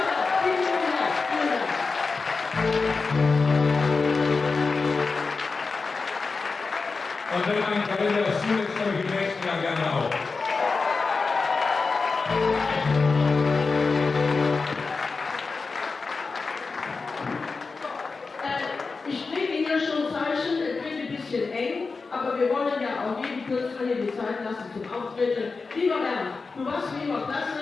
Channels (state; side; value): quieter; right; 4.3 dB